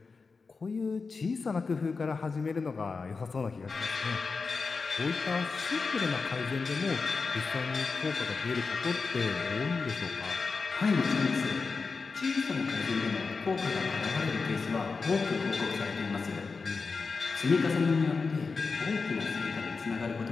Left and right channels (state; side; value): quieter; right; 4.5 dB